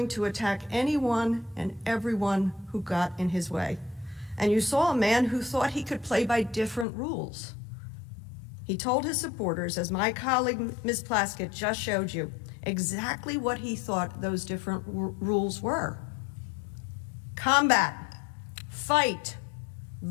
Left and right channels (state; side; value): drops out; right; at 6.9 s